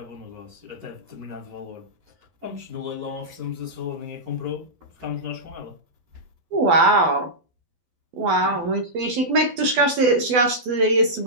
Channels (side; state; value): left; late; 12 ms